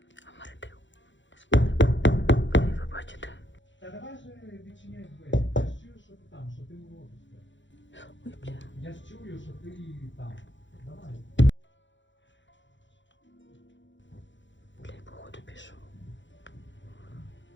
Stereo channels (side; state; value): right; late; 0.54 ms